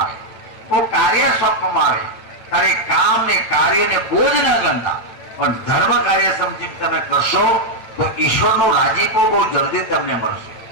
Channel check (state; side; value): late; right; 9.1 ms